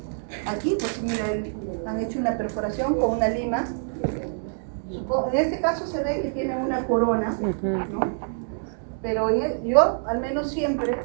Aquí, pues miren, han hecho una perforación con una lima. En este caso se ve que tiene una corona, ¿no? Pero yo al menos siempre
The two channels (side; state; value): left; silent; digital silence